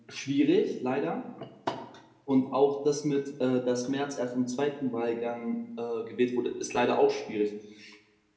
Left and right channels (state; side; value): identical; both; correlation 1.00